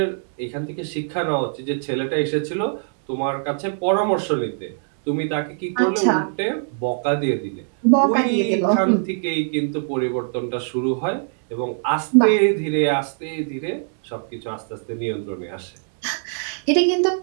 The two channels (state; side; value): silent; left; digital silence